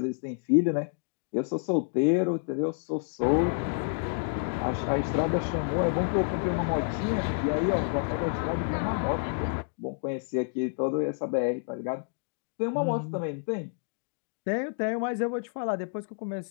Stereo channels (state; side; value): silent; right; digital silence